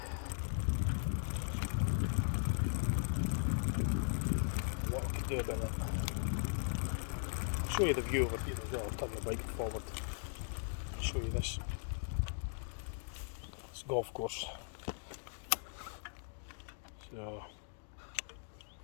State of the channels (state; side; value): silent; right; digital silence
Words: What I could do about it. I'll show you the view over here as well. I'll turn the bike forward. I'll show you this. It's a golf course. So